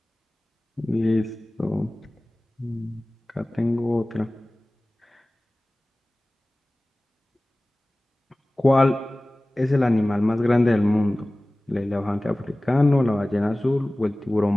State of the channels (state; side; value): normal; both; correlation 0.98